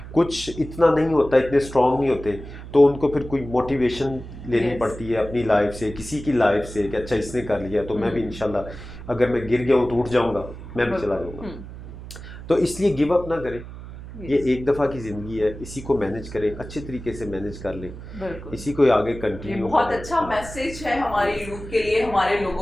कुछ इतना नहीं होता, इतने स्ट्रॉन्ग नहीं होते, तो उनको फिर कोई मोटिवेशन लेनी पड़ती है अपनी लाइफ से, किसी की लाइफ से, कि अच्छा इसने कर लिया तो मैं भी इंशाल्लाह, अगर मैं गिर गया हूँ तो उठ जाऊँगा, मैं भी चला जाऊँगा। तो इसलिए गिव अप ना करें। ये एक दफ़ा की ज़िंदगी है, इसी को मैनेज करें, अच्छे तरीके से मैनेज कर लें, इसी को आगे कंटिन्यू। बहुत अच्छा मैसेज है हमारी यूथ के लिए, हमारे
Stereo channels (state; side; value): noise; right; hum, 13 dB below the sound